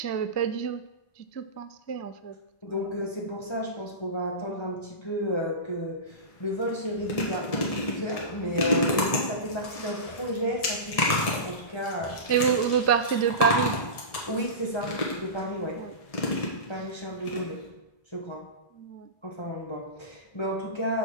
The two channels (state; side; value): late; right; 1.7 ms